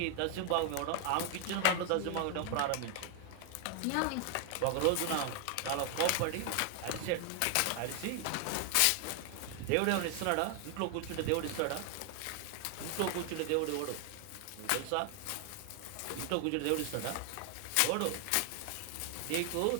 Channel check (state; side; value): different; both; correlation 0.00